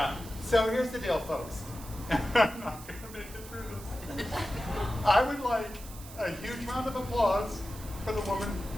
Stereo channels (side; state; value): right; noise; hiss, 16 dB below the sound